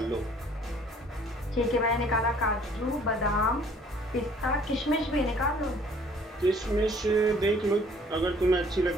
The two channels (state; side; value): normal; both; correlation 0.57